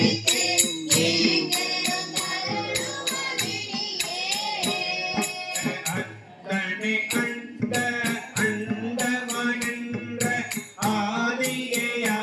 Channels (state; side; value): identical; both; correlation 1.00